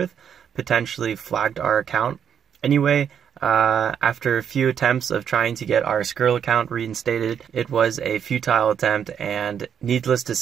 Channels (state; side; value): quieter; left; 8.2 dB